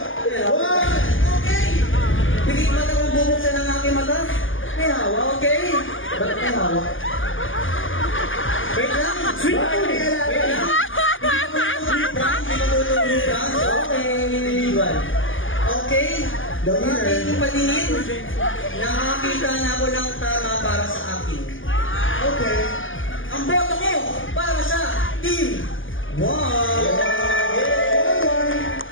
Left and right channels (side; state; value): right; late; 0.58 ms